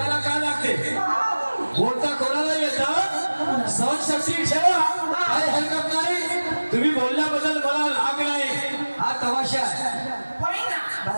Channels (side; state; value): both; inverted; correlation -1.00